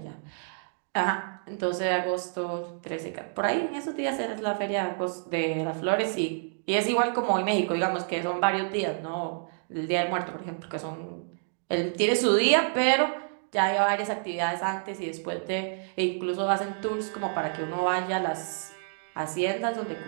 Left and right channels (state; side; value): silent; left; digital silence